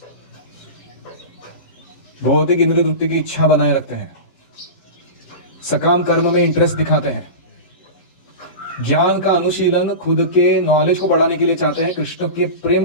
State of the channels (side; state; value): right; late; 12 ms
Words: भौतिक इंद्रिय वृत्ति की इच्छा बनाए रखते हैं, सकाम कर्म में इंटरेस्ट दिखाते हैं, ज्ञान का अनुशीलन खुद के नॉलेज को बढ़ाने के लिए चाहते हैं, कृष्ण के प्रेम